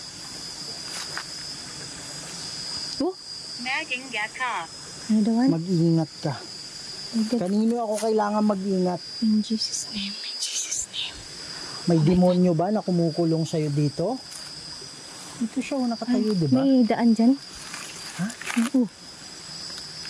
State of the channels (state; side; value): identical; both; correlation 1.00